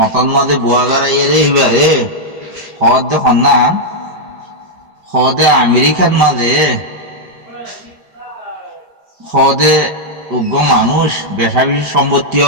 মাঝে বুয়াগারা ইয়ে রে হিবারে হদ দে সন্নাম হদে আমেরিকার মাঝে হদে উগ্র মানুষ বেশা বেশি সম্পত্তি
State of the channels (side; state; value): left; late; 5.1 ms